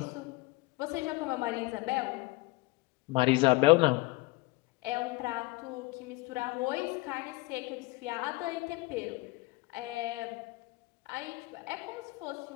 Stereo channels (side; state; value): right; quieter; 22.8 dB